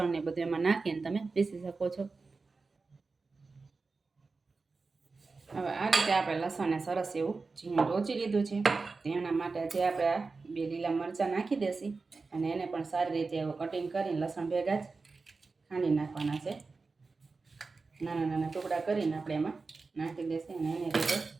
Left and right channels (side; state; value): left; quieter; 4.1 dB